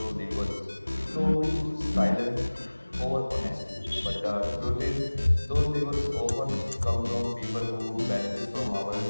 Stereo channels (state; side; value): inverted; both; correlation -1.00